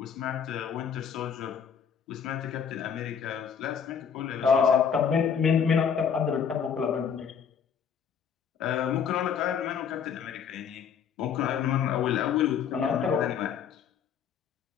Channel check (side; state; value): right; quieter; 7.3 dB